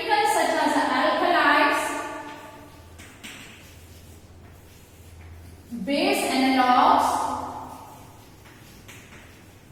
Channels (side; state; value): both; identical; correlation 1.00